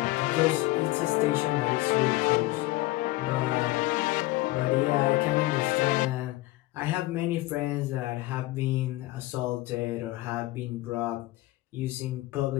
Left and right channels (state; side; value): quieter; right; 18.8 dB